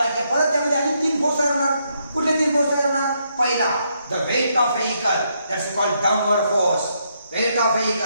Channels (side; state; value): both; inverted; correlation -0.77